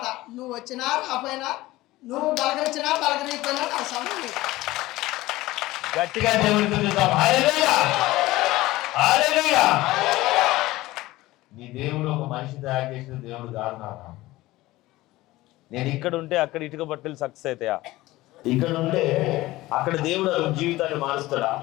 నువ్వు వచ్చినా రాపోయినా, నువ్వు పలకరించినా పలకరించినా నా సమయం లేదు. గట్టిగా దేవుడికి చూద్దాం. హల్లెలూయా, హల్లెలూయా. నీ దేవుడు ఒక మనిషి తయారు చేసిన దేవుడు కాదు నాన్న. నేను ఇక్కడ ఉంటే అక్కడ ఇటుక బట్టలు సక్సెస్ అవుతాయా? ఇక్కడ ఉంటే అక్కడ దేవుడు అతని జీవితాన్ని మారుస్తాడా?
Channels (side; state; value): right; quieter; 18.0 dB